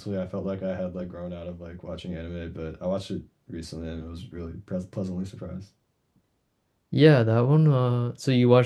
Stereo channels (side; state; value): both; identical; correlation 1.00